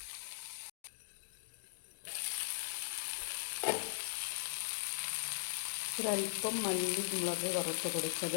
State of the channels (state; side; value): silent; right; digital silence